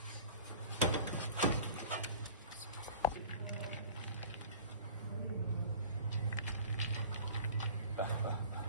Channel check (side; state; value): both; inverted; correlation -0.42